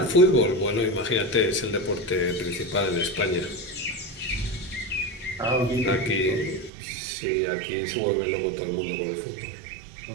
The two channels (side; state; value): left; drops out; at 6.7 s